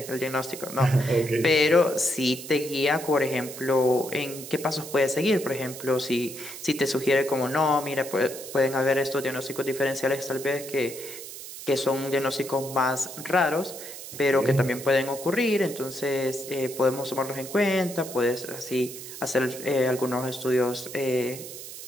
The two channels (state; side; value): noise; right; hiss, 12 dB below the sound